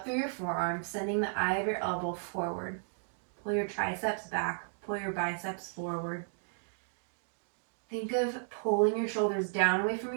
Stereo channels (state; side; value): silent; left; digital silence